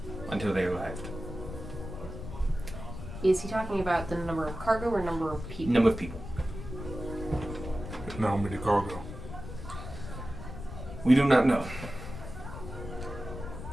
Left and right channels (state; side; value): noise; left; rumble, 9 dB below the sound